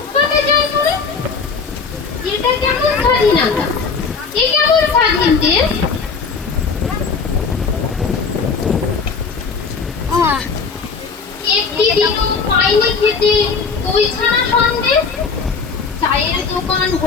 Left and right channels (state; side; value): quieter; right; 5.1 dB